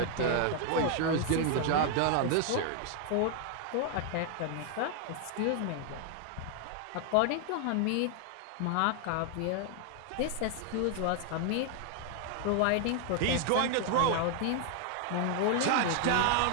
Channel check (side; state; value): both; different; correlation 0.00